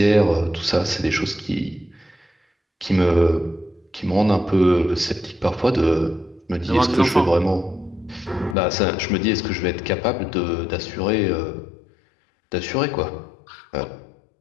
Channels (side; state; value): right; drops out; at 8.6 s